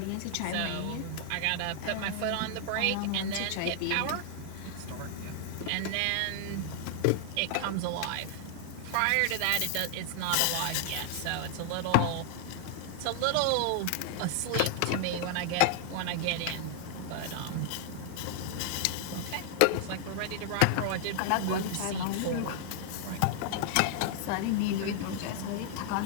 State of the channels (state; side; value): different; both; correlation 0.00